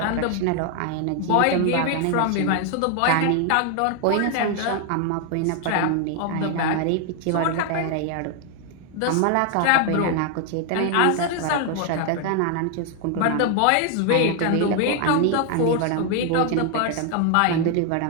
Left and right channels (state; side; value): different; both; correlation 0.00